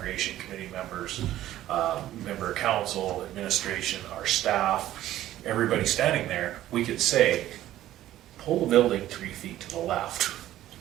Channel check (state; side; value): quieter; left; 13.6 dB